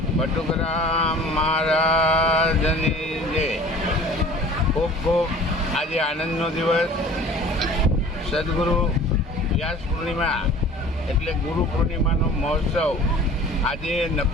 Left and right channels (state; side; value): normal; both; correlation 0.45